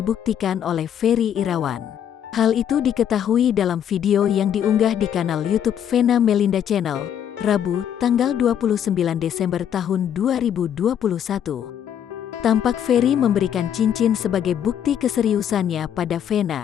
oleh Ferry Irawan. Hal itu diketahui dalam video yang diunggah di kanal YouTube Vena Melinda Channel, Rabu, tanggal 29 Desember tahun 2021. Tampak Ferry memberikan cincin sebagai bukti keseriusannya pada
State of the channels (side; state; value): right; quieter; 9.3 dB